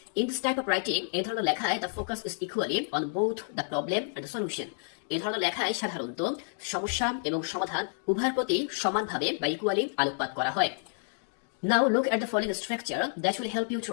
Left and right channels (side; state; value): right; silent; digital silence